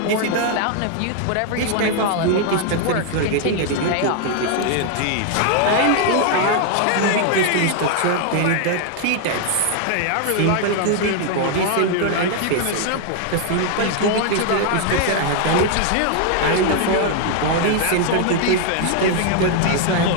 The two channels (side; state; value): both; different; correlation 0.00